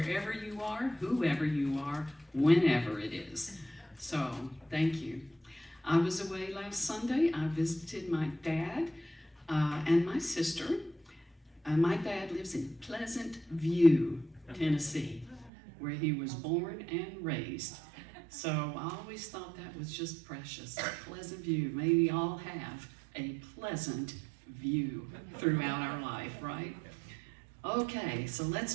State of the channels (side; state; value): left; drops out; at 15.5 s